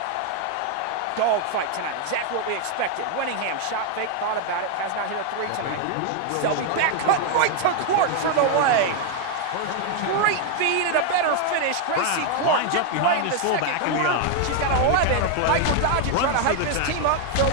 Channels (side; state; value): both; different; correlation 0.00